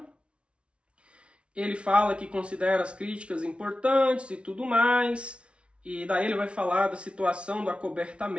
Ele fala que considera as críticas importantes e tudo mais. E daí ele vai falar da situação do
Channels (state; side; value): late; left; 0.059 ms